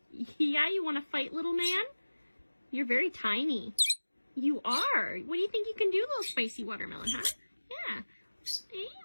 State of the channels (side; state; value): both; inverted; correlation -1.00